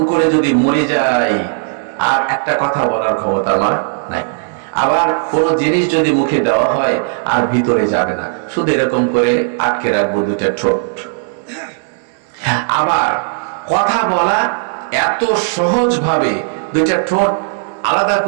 করে যদি মরে যাই, আর একটা কথা বলার ক্ষমতা আমার নাই। আবার কোন জিনিস যদি মুখে দেওয়া হয়, আর ভিতরে যাবে না, শুধু এরকম করে আটকে রাখবো দুইটা ঠোঁট। আবার কথা বলা এত সহজ ভাবে, দুইটা ঠোঁট আলাদা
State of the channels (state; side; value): silent; left; digital silence